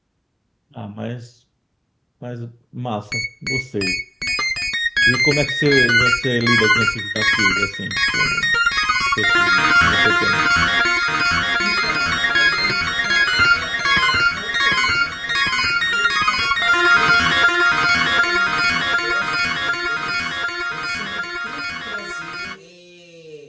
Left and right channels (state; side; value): identical; both; correlation 1.00